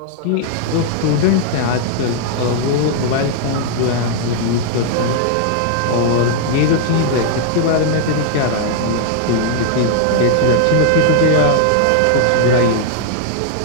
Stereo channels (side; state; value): both; different; correlation 0.00